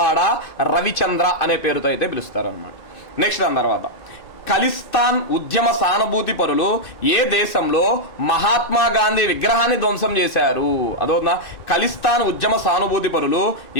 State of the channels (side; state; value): right; late; 2.6 ms